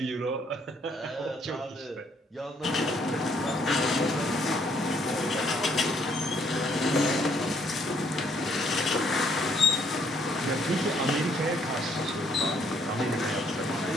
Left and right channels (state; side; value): normal; both; correlation 0.67